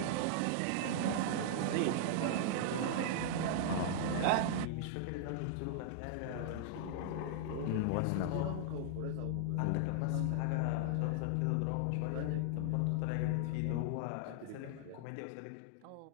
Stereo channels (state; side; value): different; both; correlation -0.01